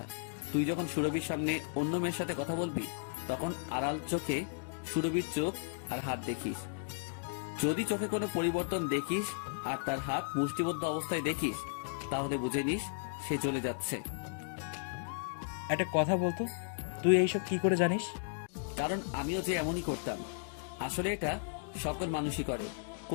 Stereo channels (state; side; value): silent; right; digital silence